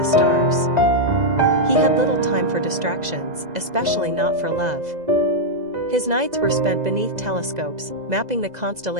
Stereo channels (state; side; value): late; left; 2.0 ms